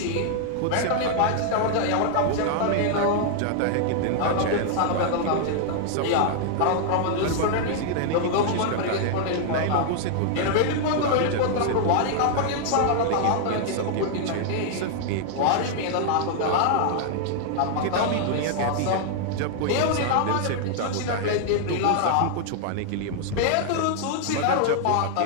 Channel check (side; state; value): both; different; correlation 0.00